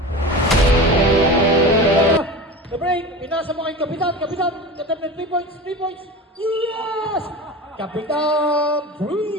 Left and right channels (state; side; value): normal; both; correlation 0.31